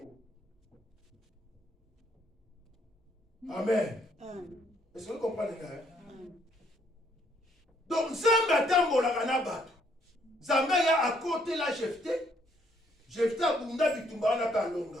Amen. Est-ce que vous comprenez ça? Donc Nzambe atambolaka na bato. Nzambe ya à côté la Jephté. Jephté abunda bitumba na palonga.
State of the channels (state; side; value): normal; both; correlation 0.68